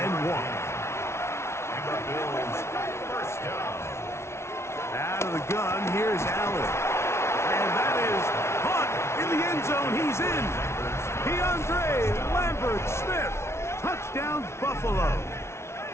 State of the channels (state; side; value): late; right; 0.13 ms